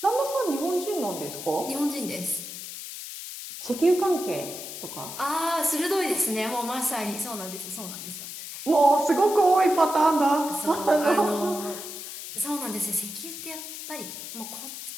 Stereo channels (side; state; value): left; noise; hiss, 9 dB below the sound